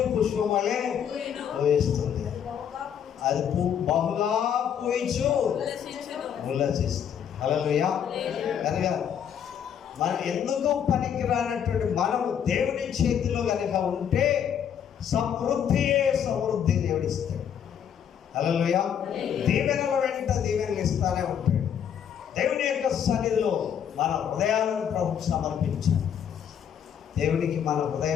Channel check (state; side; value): quieter; right; 8.6 dB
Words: పుష్పం వలె పూయిస్తుంది. అది బహుగా పూయించు ఉల్లసిస్తుంది. హల్లెలూయా. కనుక మనం ఎందుకు పనికి రానటువంటి మనము దేవుని చేతిలో కనుక ఉంటే సమృద్ధియే సమృద్ధి దేవుడిస్తాడు. హల్లెలూయా. దీవెనల వెంట దీవెనలు ఇస్తానే ఉంటాడు. దేవుని యొక్క సన్నిధిలో మన హృదయాలను ప్రభుకు సమర్పించాలి. దేవునికి మన